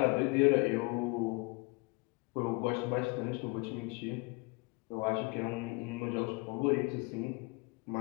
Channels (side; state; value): right; quieter; 27.8 dB